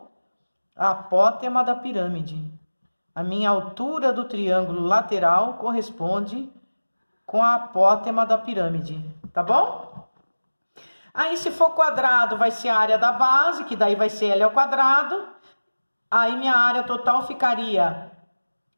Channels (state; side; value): inverted; both; correlation -1.00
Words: a apótema da pirâmide. A minha altura do triângulo lateral corresponde com a apótema da pirâmide, tá bom? Aí, se for quadrado, vai ser a área da base, que daí vai ser L ao quadrado. Aí, minha área total ficaria